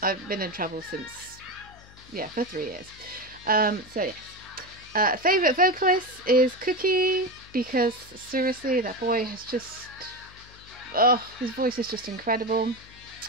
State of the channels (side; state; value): left; noise; hum, 22 dB below the sound